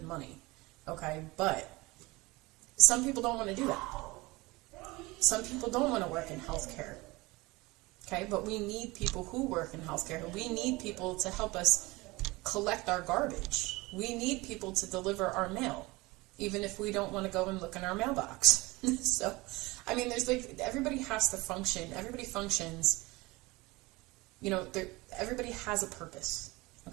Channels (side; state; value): left; quieter; 22.3 dB